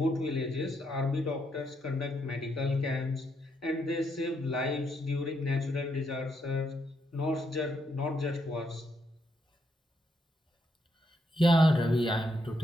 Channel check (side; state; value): both; normal; correlation 0.77